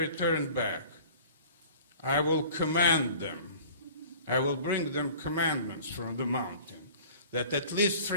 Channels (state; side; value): inverted; both; correlation -0.46